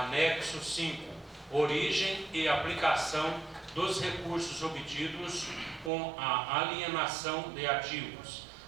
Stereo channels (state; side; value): drops out; left; at 5.9 s